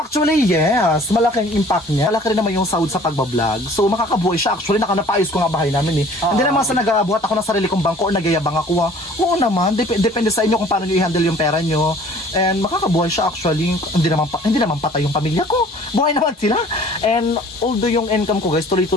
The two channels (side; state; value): both; normal; correlation 0.51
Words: yes. Malaking impact niya. Malaki rin naman yung sahod sa pagbablog. So, makakabuhay siya. Actually, napayos ko nga bahay namin eh. Hindi naman sa nag-abuhat ako ng sarili kong bangko o nagyayabang ako. Oo naman. Depende sa inyo kung paano nyo i-handle yung pera nyo. And makakabuhay siya actually. Hindi naman patay yung pamilya ko. Buhay naman sila. And although yung income ko guys,